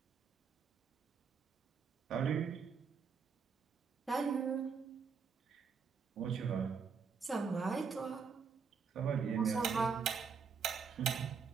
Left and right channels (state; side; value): quieter; left; 5.9 dB